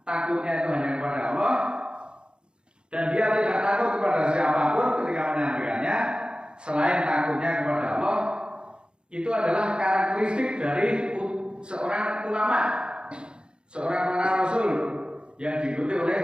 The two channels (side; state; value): left; late; 0.051 ms